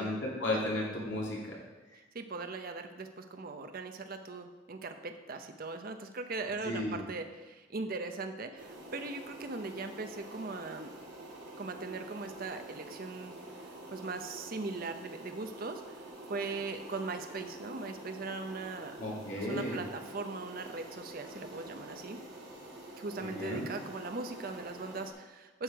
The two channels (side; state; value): both; normal; correlation 0.32